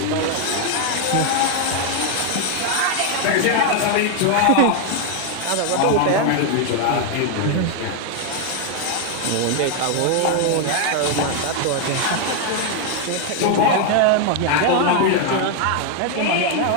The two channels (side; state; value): both; different; correlation 0.00